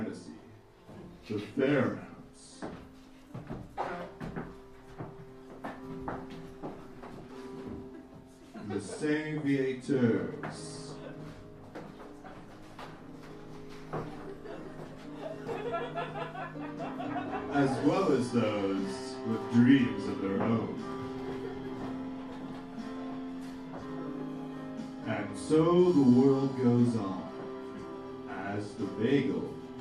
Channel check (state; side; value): identical; both; correlation 1.00